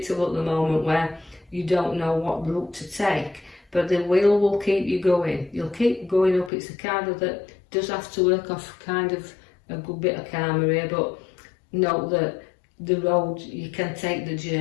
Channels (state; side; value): drops out; right; at 6.5 s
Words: at the moment where you don't know what route to take, but the wheel will keep you going. You'll keep going up. It's a card that does have to work off kind of a good bit of karma here, but note that the road, you can take the